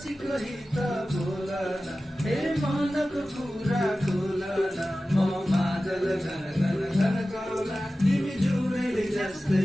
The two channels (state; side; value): normal; both; correlation 0.95